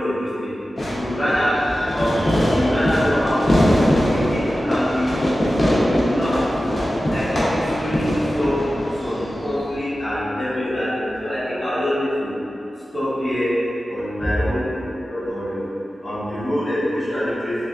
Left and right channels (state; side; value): normal; both; correlation 0.94